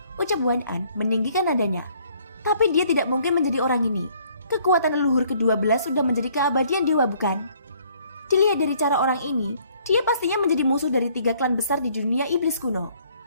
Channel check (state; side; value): inverted; both; correlation -0.62